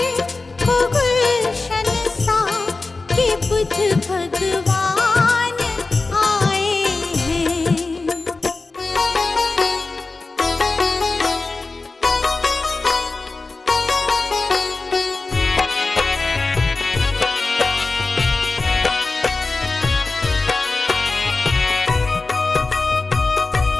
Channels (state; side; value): quieter; right; 3.6 dB